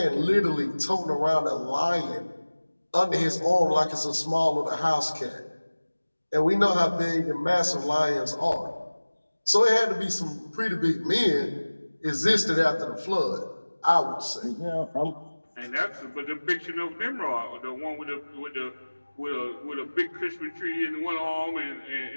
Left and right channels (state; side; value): inverted; both; correlation -1.00